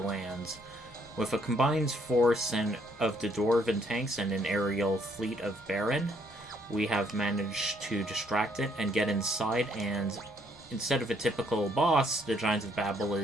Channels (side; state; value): both; normal; correlation 0.68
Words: With a combined force of the Dwarven tanks and an aerial fleet of Baron, we have managed to distract it and get inside, and instead of a typical boss, the Giant of Babel